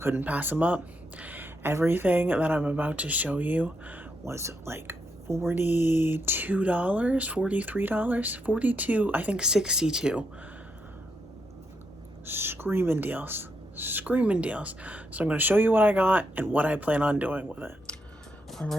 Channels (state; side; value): normal; both; correlation 0.80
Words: pass them up. Everything that I'm about to show you was like $42, $43, 42, I think 62. Screaming deals. Screaming deals. So I'm going to show you what I got and what I plan on doing with it. All